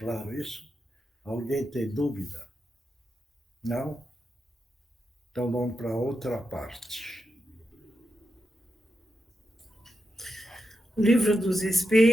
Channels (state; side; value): normal; both; correlation 0.87